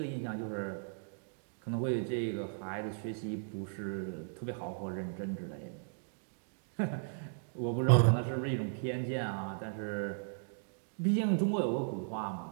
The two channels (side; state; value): left; silent; digital silence